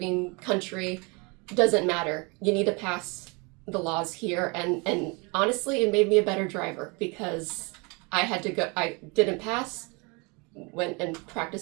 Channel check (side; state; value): left; quieter; 29.6 dB